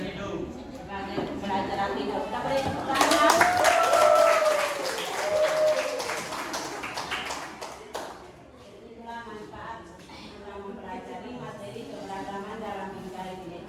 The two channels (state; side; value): identical; both; correlation 1.00